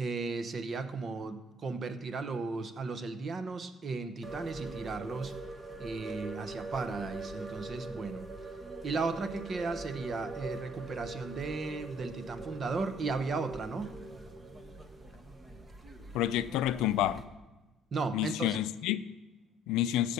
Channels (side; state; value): both; normal; correlation 0.57